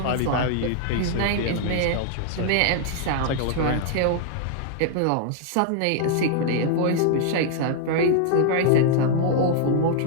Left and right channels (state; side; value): different; both; correlation -0.01